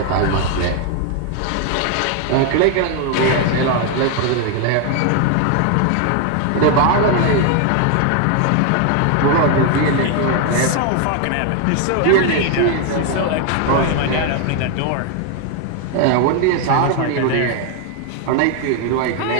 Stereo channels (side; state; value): both; different; correlation 0.01